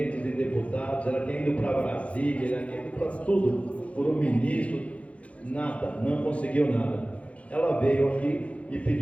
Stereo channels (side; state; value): right; late; 0.064 ms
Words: de deputados, ela tinha ido para Brasília, ela tinha ido para tudo, por um ministro, nada, não conseguiu nada. Ela veio aqui e